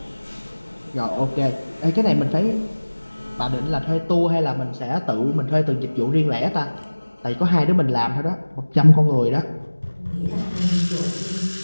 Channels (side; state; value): both; inverted; correlation -1.00